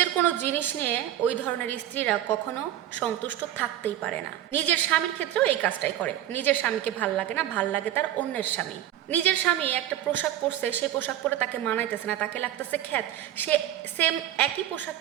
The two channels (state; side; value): quieter; left; 12.3 dB